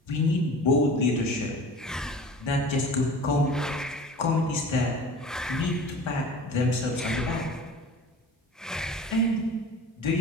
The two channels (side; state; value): both; normal; correlation 0.40